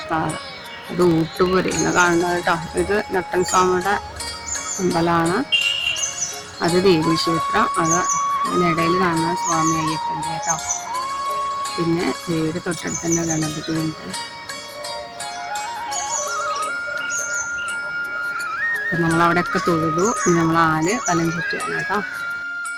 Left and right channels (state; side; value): identical; both; correlation 1.00